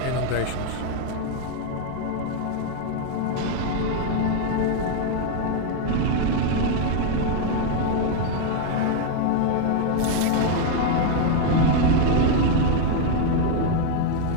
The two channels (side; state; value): both; different; correlation 0.00